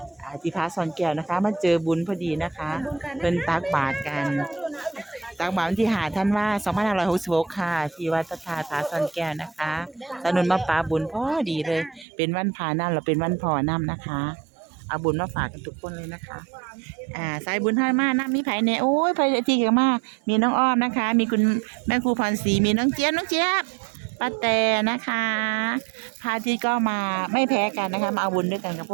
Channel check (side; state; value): left; drops out; at 12.1 s